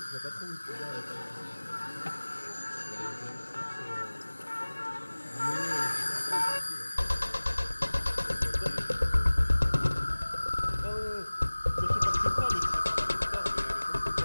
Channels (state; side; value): inverted; both; correlation -1.00